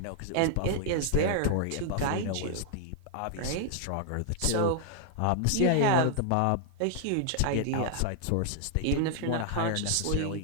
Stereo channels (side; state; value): both; different; correlation -0.01